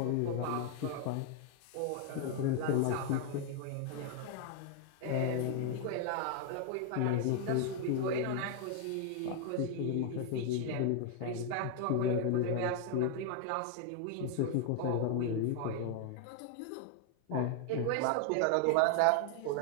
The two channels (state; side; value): different; both; correlation 0.01